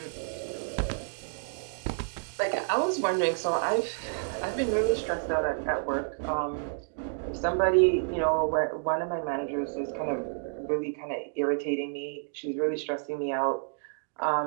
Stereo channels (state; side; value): silent; left; digital silence